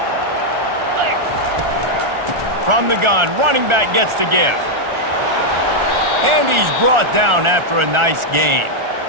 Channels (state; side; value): late; left; 1.4 ms